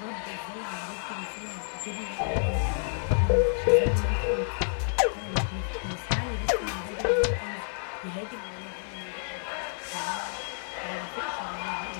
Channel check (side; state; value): right; silent; digital silence